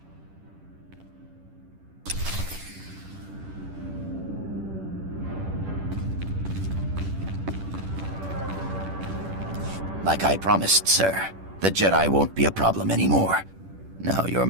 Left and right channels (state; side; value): late; left; 10 ms